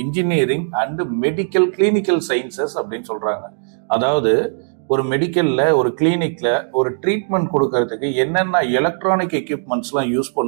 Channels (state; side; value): silent; left; digital silence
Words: engineering and medical clinical sciences அப்படின்னு சொல்றாங்க. அதாவது ஒரு மெடிக்கல்ல ஒரு கிளினிக்ல ஒரு ட்ரீட்மெண்ட் கொடுக்கறதுக்கு என்னென்ன எலக்ட்ரானிக் எக்யூப்மெண்ட்ஸ்லாம் யூஸ்